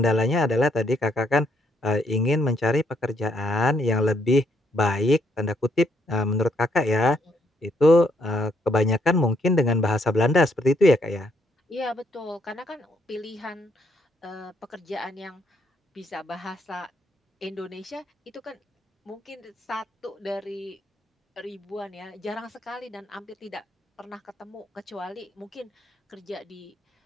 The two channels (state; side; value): normal; both; correlation 0.72